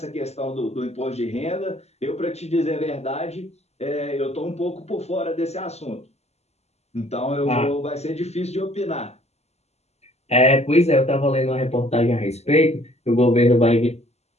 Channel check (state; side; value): late; right; 0.31 ms